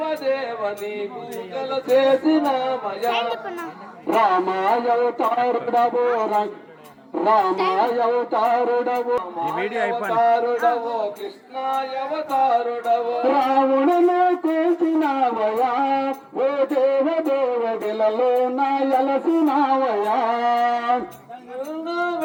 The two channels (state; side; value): identical; both; correlation 1.00